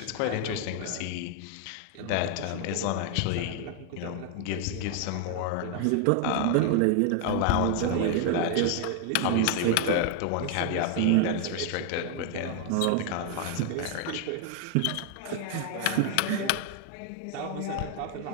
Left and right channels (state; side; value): different; both; correlation 0.00